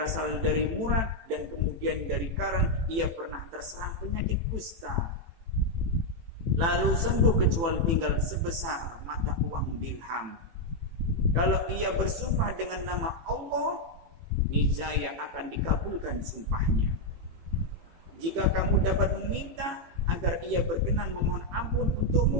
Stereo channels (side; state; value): left; late; 18 ms